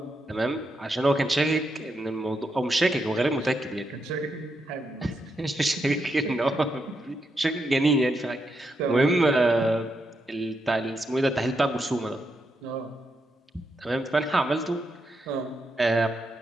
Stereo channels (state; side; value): normal; both; correlation 0.82